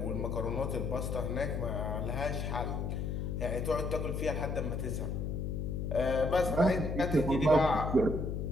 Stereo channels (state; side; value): noise; left; hum, 2 dB below the sound